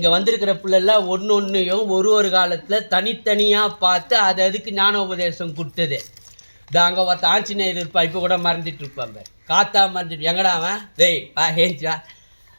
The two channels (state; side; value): inverted; both; correlation -1.00